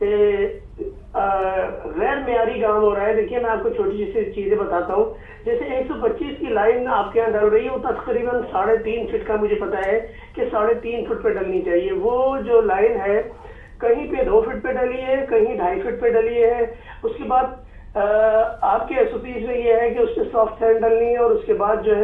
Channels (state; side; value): identical; both; correlation 1.00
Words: गैर मेयारी काम हो रहा है। देखिए, मैं आपको छोटी सी चीजें बताता हूँ। जैसे 125 की लाइन आपके यहाँ डल रही है, वो तकरीबन 3.5 फीट का मुझे पता है कि 3.5 फुट पे डलनी चाहिए। वो जो लाइन है कहीं पे 2 फीट पे डली है, कहीं 2.5 फीट पे डली है। उसके बाद आपके SOPs में ये है कि उस पर सॉफ्ट सैंड डलनी है और उसके बाद जो